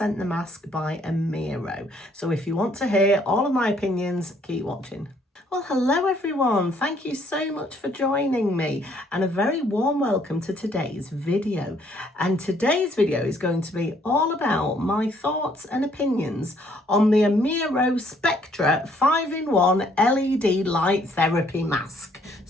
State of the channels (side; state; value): both; normal; correlation 0.65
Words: the mask by AMIRO. So if you want to hear all of my opinions, keep watching. Well, hello everyone. Thank you so much for joining me and a very warm welcome to today's video. And today's video is going to be all about my thoughts and opinions on the AMIRO Spectra 5-in-1 LED light therapy mask.